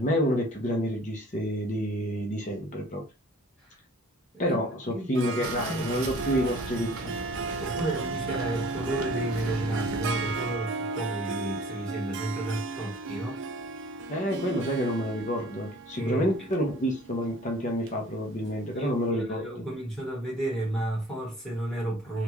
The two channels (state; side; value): normal; both; correlation 0.50